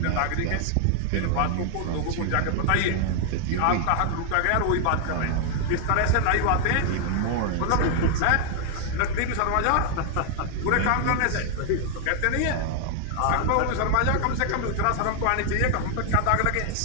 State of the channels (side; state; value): both; different; correlation 0.00